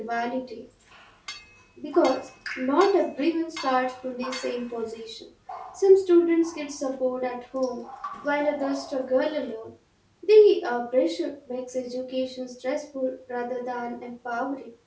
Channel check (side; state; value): both; identical; correlation 1.00